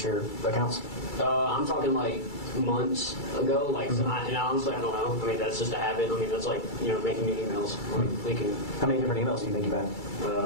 your accounts? I'm talking like months ago, like, and honestly, I don't know. I mean, that's just a habit. I mean, that's like, making new emails. Like, How many different emails do you think you've had?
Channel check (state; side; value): late; right; 2.3 ms